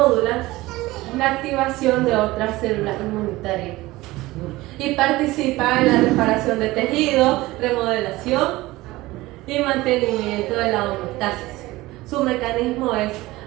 la activación de otras células inmunitarias. Y participa en la reparación de tejidos, remodelación y mantenimiento de la homeostasis. Su mecanismo es,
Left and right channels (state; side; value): quieter; left; 19.0 dB